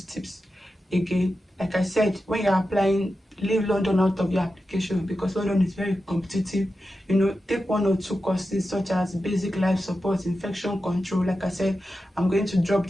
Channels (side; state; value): both; normal; correlation 0.91